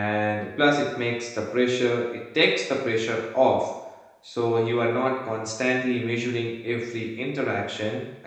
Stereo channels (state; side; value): identical; both; correlation 1.00